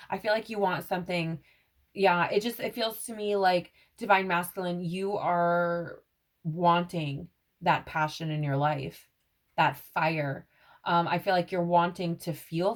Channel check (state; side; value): identical; both; correlation 1.00